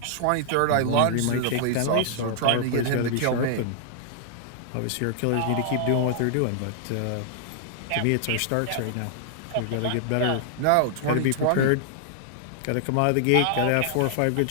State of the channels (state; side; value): different; both; correlation -0.01